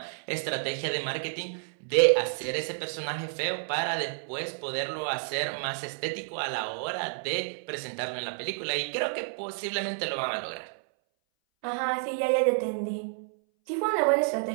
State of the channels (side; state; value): left; silent; 58 dB below the other